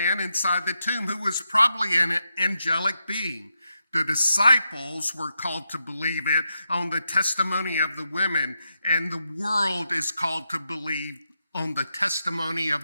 inside the tomb, who was probably an angelic being. The disciples were called to believe it on the testimony of the women, and the world is called to believe on the testimony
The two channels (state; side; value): inverted; both; correlation -0.86